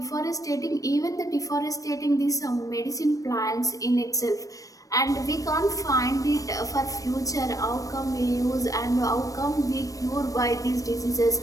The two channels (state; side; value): late; right; 0.16 ms